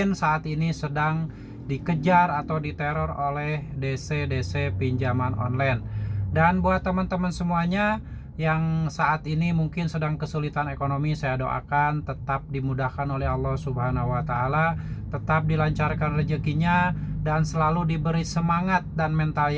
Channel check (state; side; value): identical; both; correlation 1.00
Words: saat ini sedang dikejar atau diteror oleh DC-DC pinjaman online. Dan buat teman-teman semuanya yang saat ini mungkin sedang kesulitan ekonomi, saya doakan tetap dimudahkan oleh Allah Subhanahu wa taala, tetap dilancarkan rezekinya dan selalu diberi semangat dan mental